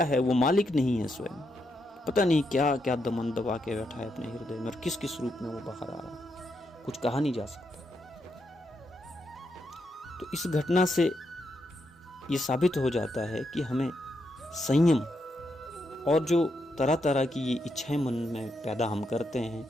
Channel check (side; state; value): both; normal; correlation 0.81